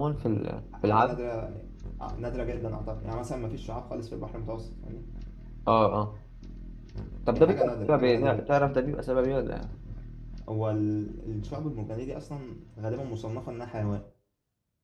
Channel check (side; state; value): both; identical; correlation 1.00